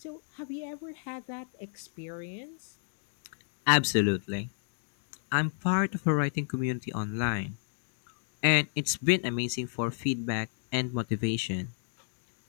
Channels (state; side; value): silent; right; digital silence